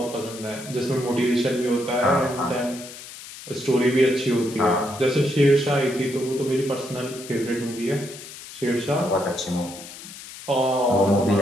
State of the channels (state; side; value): noise; left; hiss, 14 dB below the sound